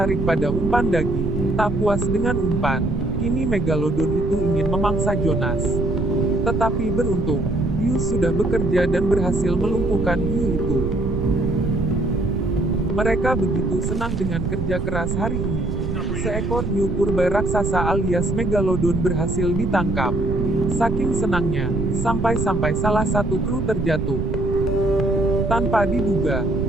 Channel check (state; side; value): noise; right; rumble, 2 dB below the sound